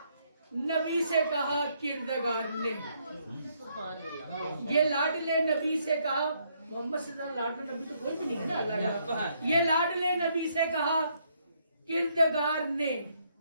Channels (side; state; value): both; inverted; correlation -0.72